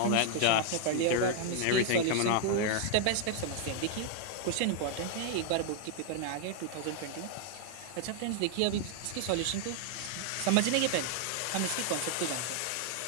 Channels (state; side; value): different; both; correlation 0.00